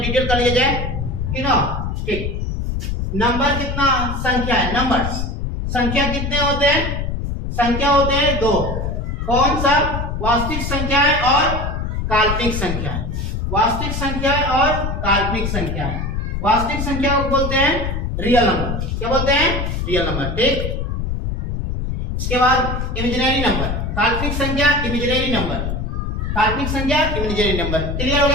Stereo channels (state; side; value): noise; left; rumble, 2 dB below the sound